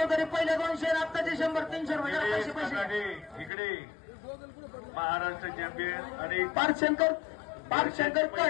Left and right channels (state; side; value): drops out; right; at 3.5 s